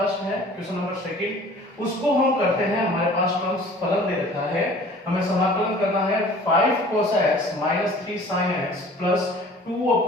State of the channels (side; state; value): both; normal; correlation 0.48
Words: है क्वेश्चन नंबर सेकंड, उसको हम करते हैं। हमारे पास टर्म्स फलन दे रखा है, हमें समाकलन करना है 5 cos x - 3 sin x plus 2